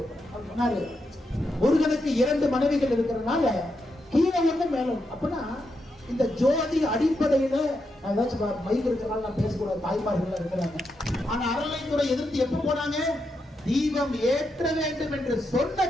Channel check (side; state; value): both; normal; correlation 0.84